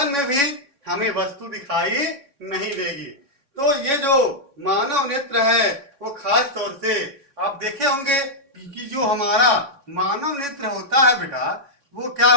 में भी हमें वस्तु दिखाई नहीं देगी। तो ये जो मानव नेत्र है वो खास तौर से आप देखे होंगे कि जो हमारा मानव नेत्र होता है बेटा, वो क्या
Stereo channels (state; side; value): late; left; 3.6 ms